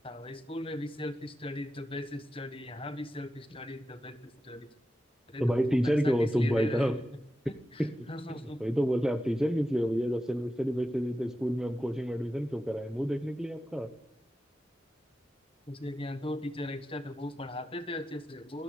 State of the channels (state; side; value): normal; both; correlation 0.91